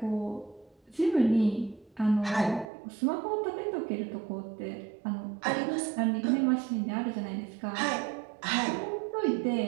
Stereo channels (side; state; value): left; drops out; at 2.7 s